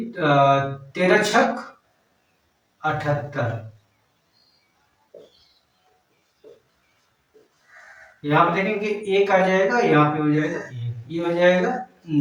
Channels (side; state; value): both; identical; correlation 1.00